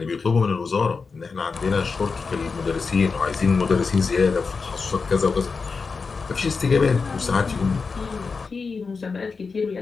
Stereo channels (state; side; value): quieter; right; 4.8 dB